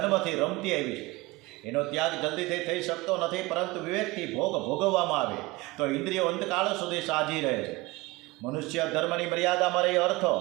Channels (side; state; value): left; quieter; 21.6 dB